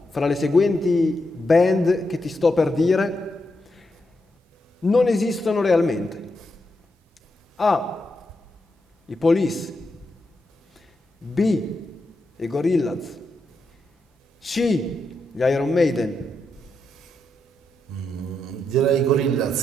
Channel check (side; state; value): both; normal; correlation 0.84